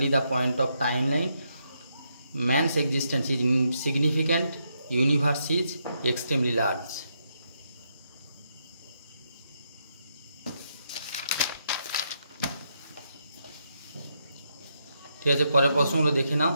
the point of timeline. Man's existence is insignificant. Universe is extremely large. ঠিক আছে, পরের প্রশ্নগুলো দেখে নাও।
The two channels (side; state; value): both; inverted; correlation -0.79